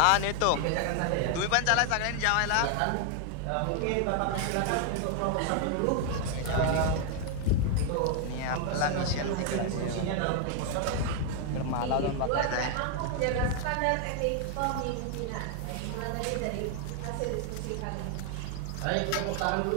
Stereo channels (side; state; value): both; different; correlation 0.00